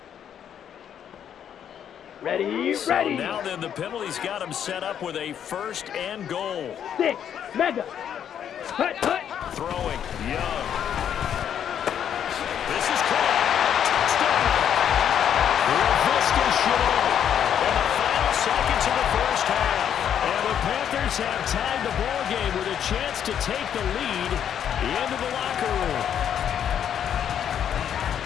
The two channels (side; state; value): right; quieter; 9.1 dB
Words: Ready, So ready. now then the penalty's got him set up with a 1st and goal. 6, mega. Hut, hut. Throwing, Young. This is caught. Touchdown. Laviska Shenault. In the final seconds of the first half. And the Panthers have tied the ball game with a chance to take the lead into the locker room.